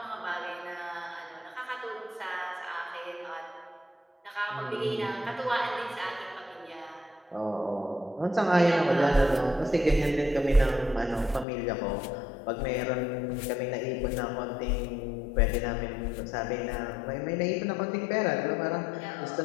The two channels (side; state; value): right; drops out; at 11.5 s